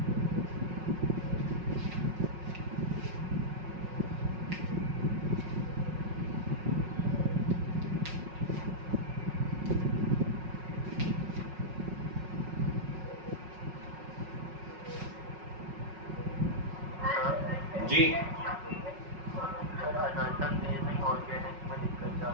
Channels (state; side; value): late; left; 5.4 ms